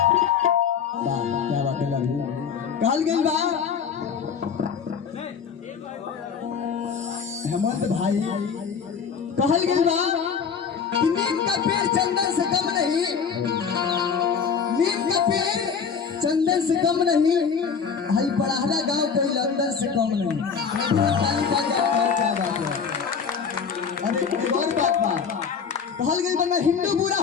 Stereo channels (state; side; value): quieter; right; 6.4 dB